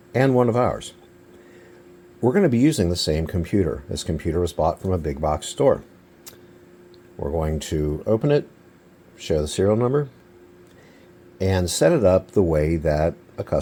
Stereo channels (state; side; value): identical; both; correlation 1.00